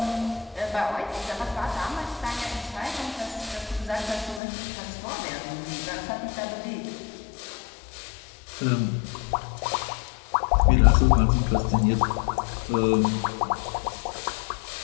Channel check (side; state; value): right; drops out; at 4.4 s